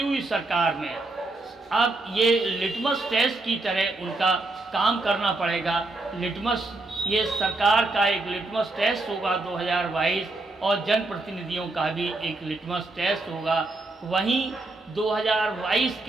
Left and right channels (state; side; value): quieter; left; 3.0 dB